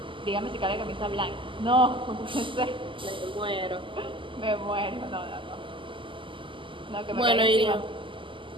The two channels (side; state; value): left; late; 0.25 ms